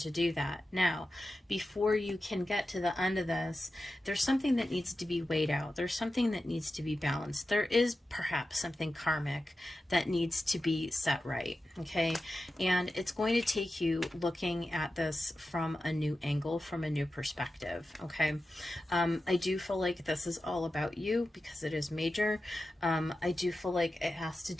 do that. Now, before you can get to the end of this, there's something that needs to be weighed out. There's something that needs to be balanced. There is perhaps something karmic that needs to be set right, okay? And it's going to take you looking at this from a new angle, from a new perspective, okay? I do feel like this is all about you because it is major. I do feel like it has to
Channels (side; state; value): both; normal; correlation 0.92